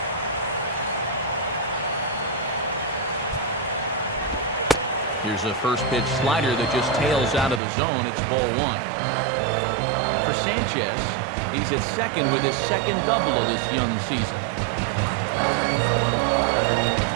Here's a first pitch slider that just tails out of the zone. It's ball one. For Sanchez, he's at second with his second double of this young season.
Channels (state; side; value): drops out; left; at 7.6 s